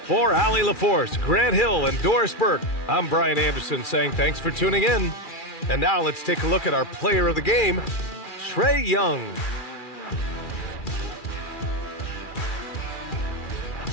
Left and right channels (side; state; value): right; late; 2.4 ms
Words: For Allie LaForce, Grant Hill, and Doris Burke, I'm Brian Anderson saying thanks for tuning in. And now let's take a look at our player of the game, Trae Young.